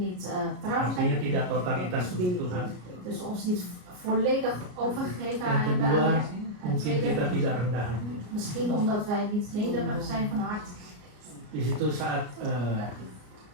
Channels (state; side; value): late; left; 33 ms